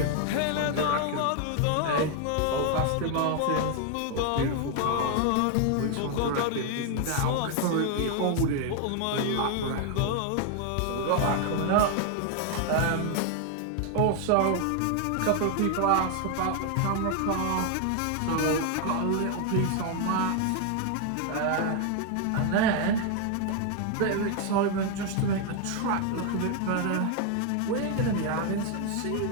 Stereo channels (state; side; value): different; both; correlation 0.00